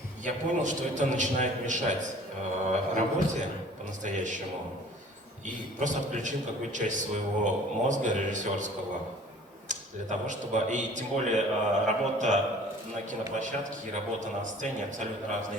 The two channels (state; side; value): normal; both; correlation 0.49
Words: я понял, что это начинает мешать работе по-настоящему. И просто отключил какую-то часть своего мозга режиссерского для того, чтобы... И тем более работа на киноплощадке и работа на сцене абсолютно